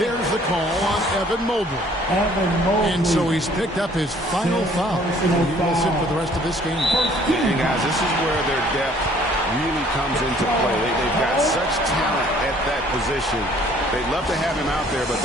the call on Evan Mobley. And so he's picked up his final foul. He will sit for the rest of this game. And guys, this is where their depth really comes into play. They've got such talent at that position. They'd love to have him out there, but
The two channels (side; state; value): both; normal; correlation 0.58